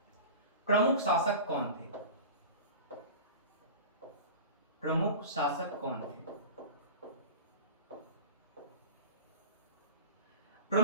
प्रमुख शासक कौन थे? प्रमुख शासक कौन थे?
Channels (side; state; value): both; inverted; correlation -0.34